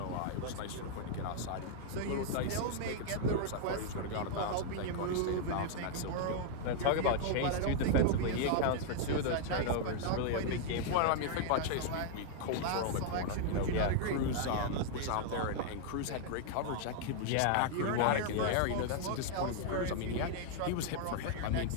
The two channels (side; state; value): both; different; correlation -0.01